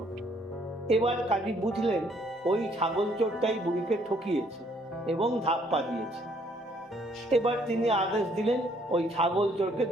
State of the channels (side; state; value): both; normal; correlation 0.65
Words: এবার কাজী বুঝলেন ওই ছাগল চোরটাই বুড়িকে ঠকিয়েছে এবং ধাপ্পা দিয়েছে। এবার তিনি আদেশ দিলেন ওই ছাগল চোরকে